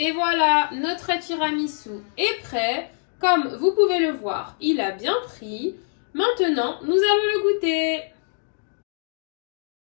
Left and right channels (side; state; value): right; silent; digital silence